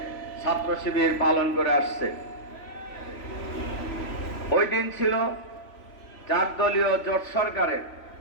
ছাত্র শিবির পালন করে আসছে। ওই দিন ছিল 4 দলীয় জোট সরকারের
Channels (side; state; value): right; late; 3.1 ms